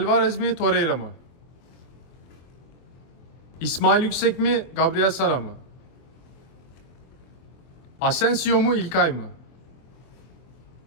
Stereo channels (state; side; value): late; right; 23 ms